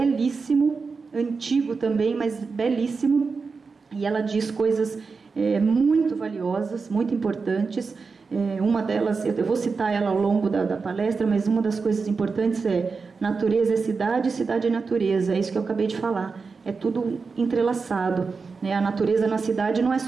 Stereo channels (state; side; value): quieter; left; 4.7 dB